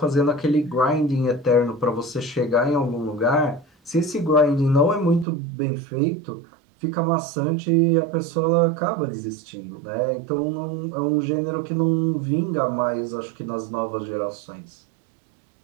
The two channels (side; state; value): left; drops out; at 5.2 s